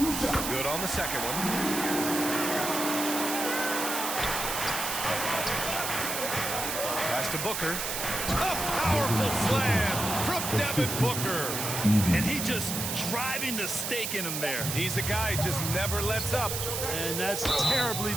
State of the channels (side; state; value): right; noise; hiss, 3 dB below the sound